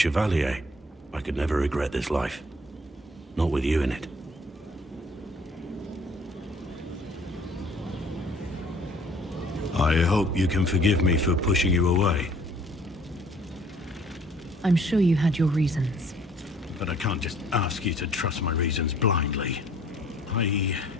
I could never regret this life. Not with you in it. I hope you can forgive me for pushing you away. I'm sure you had your reasons. But I can't just ask you to trust my reasons blindly. I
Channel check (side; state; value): both; normal; correlation 0.56